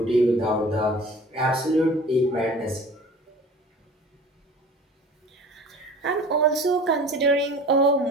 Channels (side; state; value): both; normal; correlation 0.42